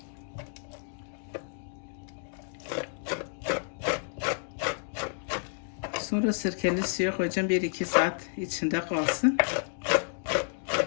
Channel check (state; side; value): silent; right; digital silence